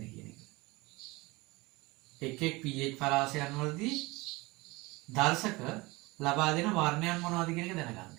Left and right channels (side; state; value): left; quieter; 22.9 dB